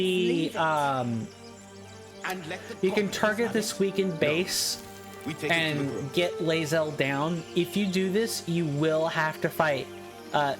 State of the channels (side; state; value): both; identical; correlation 1.00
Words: it. And let the you can goblins target have this it. weakened base We take it to the and group. get Lae'zel down. If you do this, you will have to fight